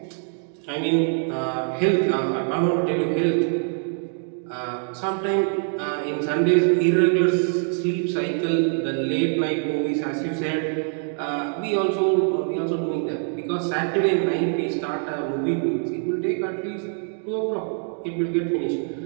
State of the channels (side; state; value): left; silent; 57 dB below the other